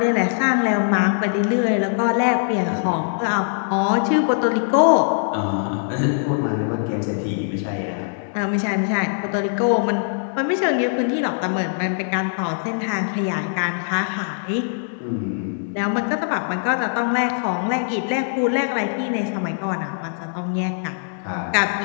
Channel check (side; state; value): right; silent; digital silence